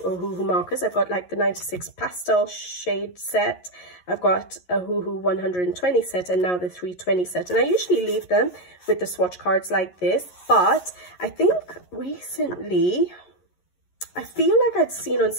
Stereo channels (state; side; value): late; right; 11 ms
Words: markers. I've got like the 96 pastel shade set. I've got a Ohuhu 120 set, and now the 320 set. And I usually leave them with the swatch cards like this, but I think recently I feel like I'd seen on